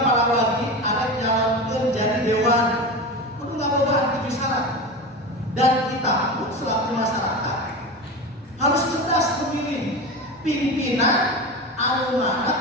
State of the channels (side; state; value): both; normal; correlation 0.25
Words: para warga ada nyalonkan jadi dewan kudu ngabogaan 7 syarat. Dan kita pun selaku masyarakat harus cerdas memilih pimpinan anu